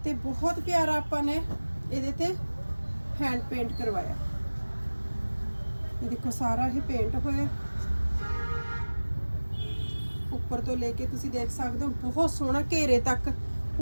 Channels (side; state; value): both; inverted; correlation -1.00